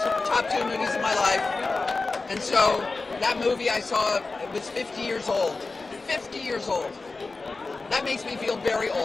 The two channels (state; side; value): quieter; right; 3.7 dB